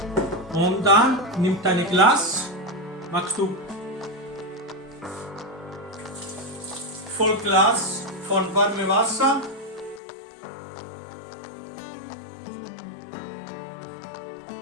Und dann nimmt ein Glas, machst du voll Glas von warmem Wasser.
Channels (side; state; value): right; drops out; at 10.0 s